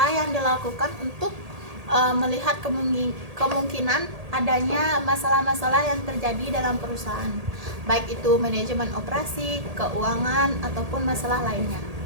yang dilakukan untuk melihat kemungkinan adanya masalah-masalah yang terjadi dalam perusahaan, baik itu manajemen operasi, keuangan, ataupun masalah lainnya.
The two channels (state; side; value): late; left; 1.8 ms